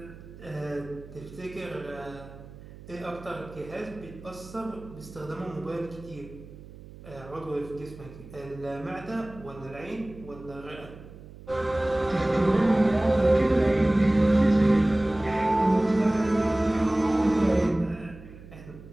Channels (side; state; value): right; noise; hum, 18 dB below the sound